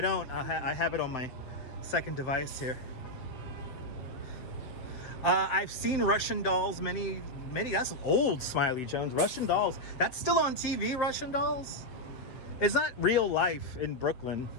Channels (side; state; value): right; late; 7.9 ms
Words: don't, I have it on my second device here. I've seen Russian Dolls, many, that's old, Smiley Jones. Russian Dolls, that's still on TV, Russian Dolls? It's not real life in Brooklyn,